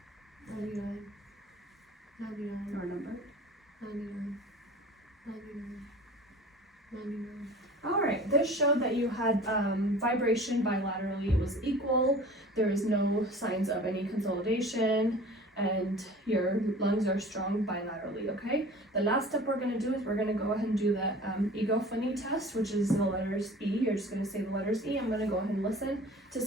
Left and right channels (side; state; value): both; normal; correlation 0.42